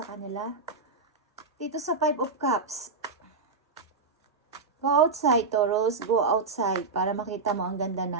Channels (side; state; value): left; quieter; 4.2 dB